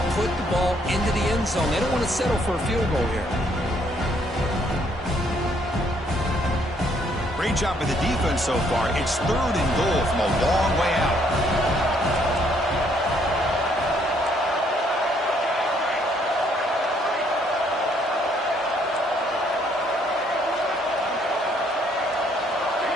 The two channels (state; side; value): normal; both; correlation 0.68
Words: put the ball into the end zone. They don't want to settle for a field goal here. Great job by the defense so far. It's third and goal from a long way out.